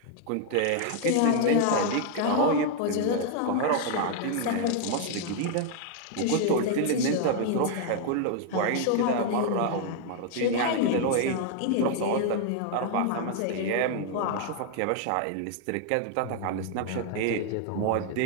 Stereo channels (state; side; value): different; both; correlation 0.00